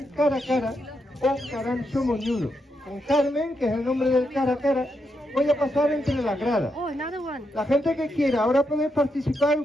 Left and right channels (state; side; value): normal; both; correlation 0.82